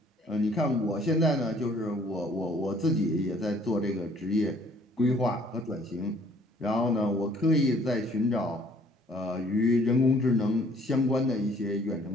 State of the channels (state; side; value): normal; both; correlation 0.59